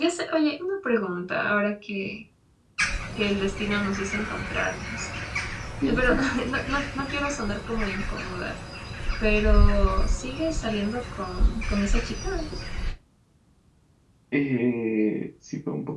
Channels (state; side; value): identical; both; correlation 1.00